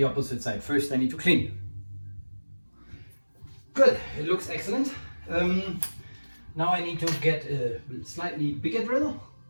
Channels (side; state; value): both; inverted; correlation -1.00